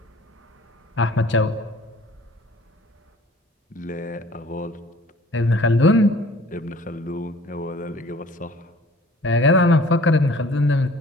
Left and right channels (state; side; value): normal; both; correlation 0.51